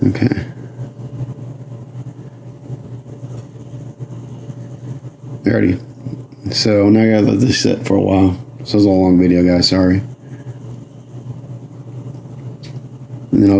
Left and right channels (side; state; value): both; identical; correlation 1.00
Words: Okay. Alrighty. So now I gotta let this sit for a while. This was a long video, guys, sorry. And then